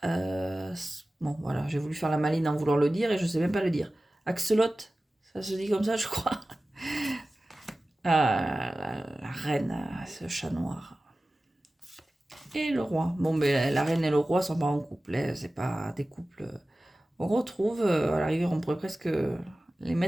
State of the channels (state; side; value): normal; both; correlation 0.96